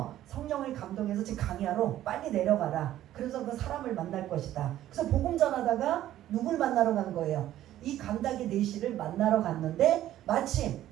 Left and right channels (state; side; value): quieter; left; 13.1 dB